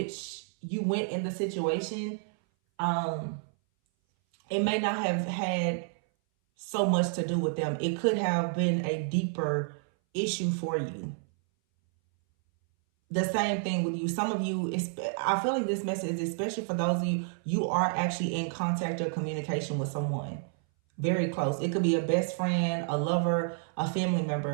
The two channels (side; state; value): left; silent; 58 dB below the other